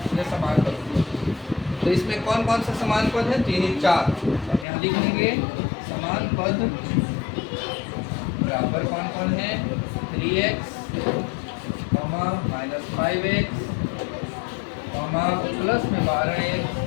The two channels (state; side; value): drops out; right; at 4.7 s